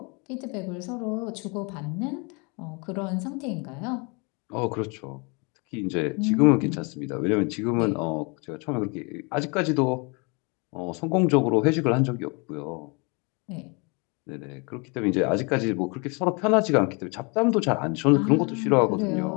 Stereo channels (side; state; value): right; quieter; 31.4 dB